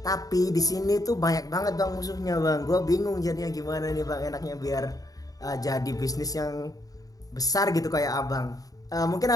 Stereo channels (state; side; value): late; right; 0.18 ms